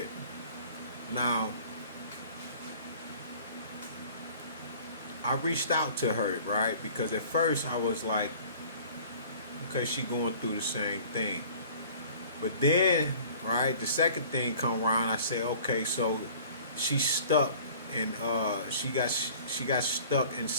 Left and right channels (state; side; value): inverted; both; correlation -0.48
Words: Now, I reached out to her, right? Because at first I was like, okay, she going through the same thing. But then, right, the second thing come around, I say, okay, so she's stuck and she got stuck